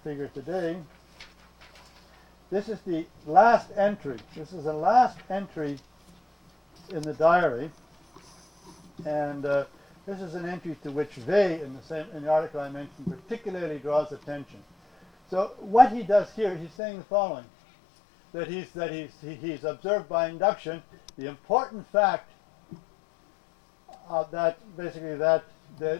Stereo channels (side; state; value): right; drops out; at 16.7 s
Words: figure today. This is the last entry. This is the last entry in the diary. And this is an entry to which Vey, in the article I mentioned, particularly draws attention. So what he does here, he's saying the following: that he's observed by induction the important fact that basically that the